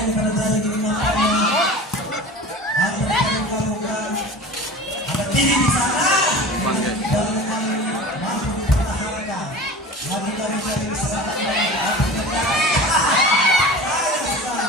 terjadi di nampaknya? Ada terbuka-buka. Ada Didi di sana. Dan memang mampu dipertahankan. Lagi-lagi dari serangan dari api negara.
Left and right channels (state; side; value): normal; both; correlation 0.36